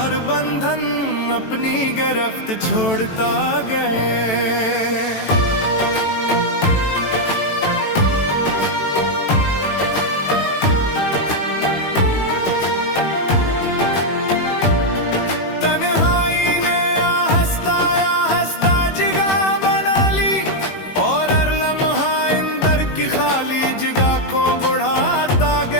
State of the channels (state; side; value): late; right; 18 ms